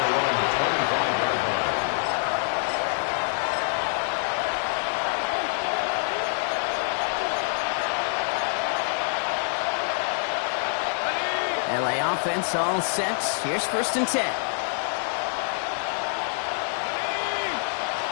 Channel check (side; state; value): right; silent; 61 dB below the other